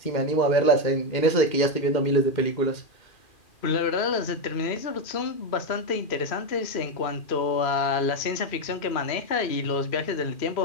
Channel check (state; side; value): late; right; 2.4 ms